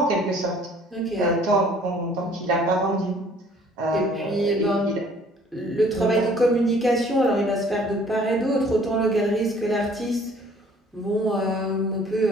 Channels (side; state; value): both; normal; correlation 0.56